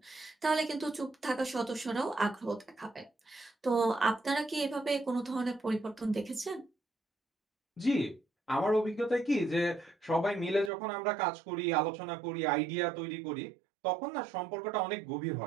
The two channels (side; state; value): left; drops out; at 10.7 s